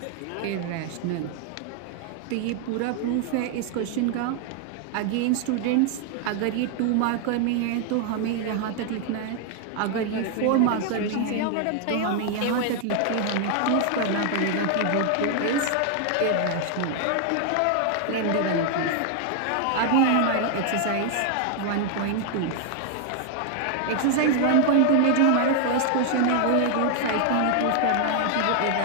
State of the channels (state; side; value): different; both; correlation 0.00